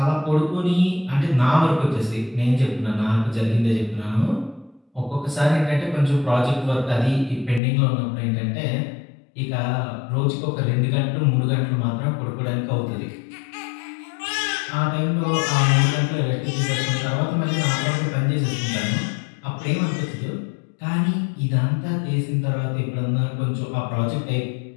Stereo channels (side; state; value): right; drops out; at 7.6 s